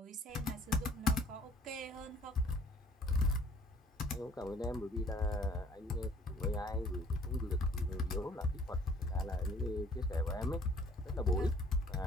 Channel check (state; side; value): normal; both; correlation 0.55